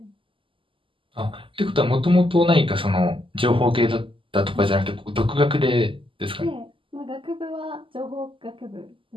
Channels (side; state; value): left; late; 0.25 ms